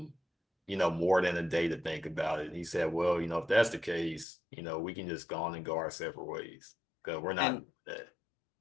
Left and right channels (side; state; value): right; drops out; at 4.2 s